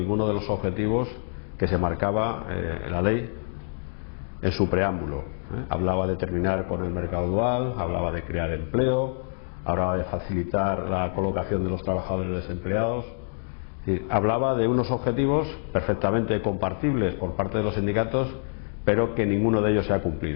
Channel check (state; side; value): silent; right; digital silence